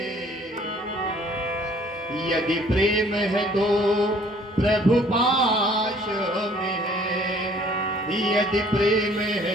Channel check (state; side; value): normal; both; correlation 0.57